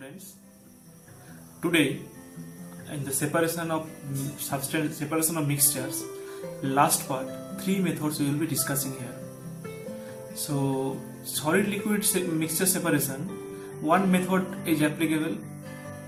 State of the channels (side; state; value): both; identical; correlation 1.00